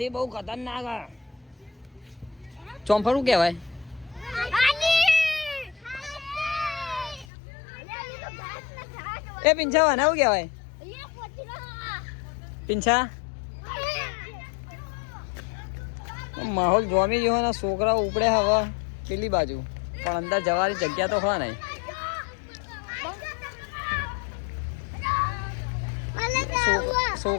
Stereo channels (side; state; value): right; drops out; at 7.2 s